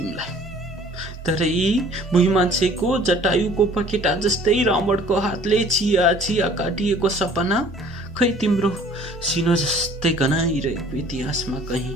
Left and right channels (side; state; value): both; normal; correlation 0.52